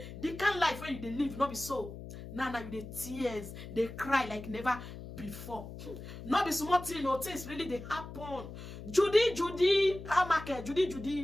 the kind of life when you live, not be so. Now you the tears, they cry like never before. Not be small thing, no things really they happen. Judy, how market,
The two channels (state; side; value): noise; left; hum, 12 dB below the sound